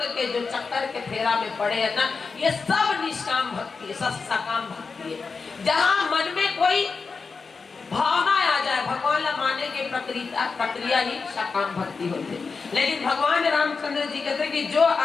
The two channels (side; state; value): right; quieter; 4.8 dB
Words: के जो चक्कर के फेरा में पड़े है ना, ये सब निष्काम भक्ति है, सब सकाम भक्ति है। जहाँ मन में कोई भावना आ जाए भगवान ला माने के प्रक्रिया ही सकाम भक्ति होती है। लेकिन भगवान रामचंद्र जी कहते कि जो